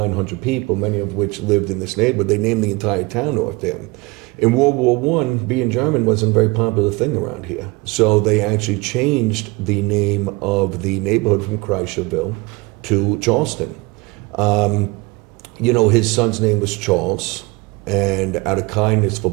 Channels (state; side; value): quieter; left; 24.9 dB